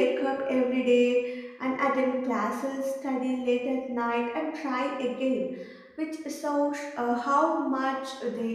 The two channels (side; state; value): both; identical; correlation 1.00